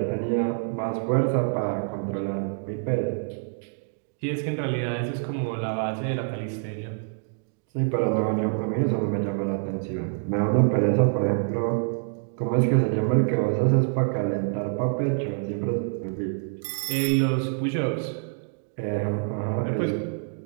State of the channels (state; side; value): silent; left; 61 dB below the other